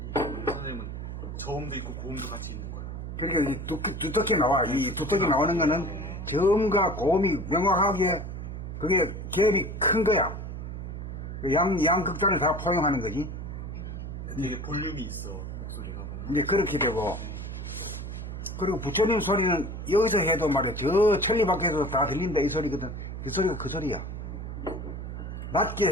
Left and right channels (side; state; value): right; noise; hum, 7 dB below the sound